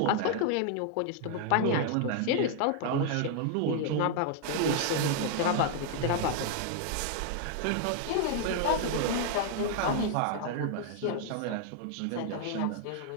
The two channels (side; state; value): both; different; correlation 0.00